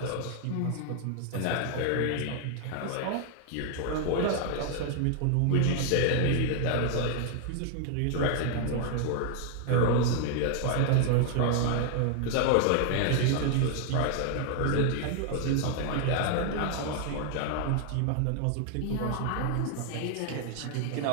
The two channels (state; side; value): different; both; correlation 0.00